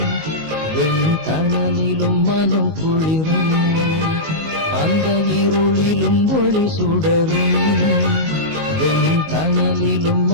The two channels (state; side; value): late; left; 19 ms